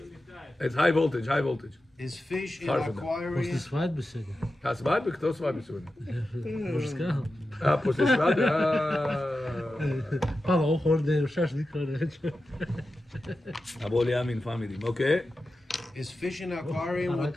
It's high voltage, high voltage. Is fish in Sorry for that. После aquarium? свадьбы сегодня. А свадьбы? Кто свадьбы сегодня? Уже сказал. После свадьбы? Папа, уходит, шашлык, короче. Аболи Амин family, okay? Is fish in aquarium with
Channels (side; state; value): both; normal; correlation 0.92